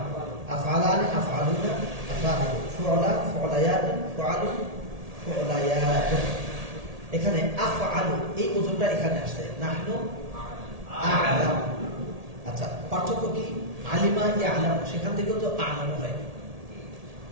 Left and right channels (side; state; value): left; late; 1.8 ms